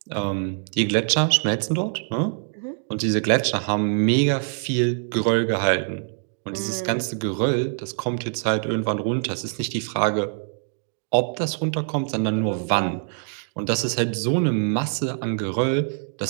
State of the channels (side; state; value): left; silent; 63 dB below the other